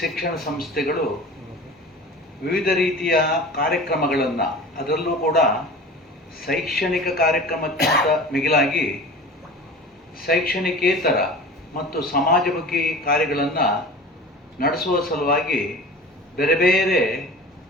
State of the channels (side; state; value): both; normal; correlation 0.38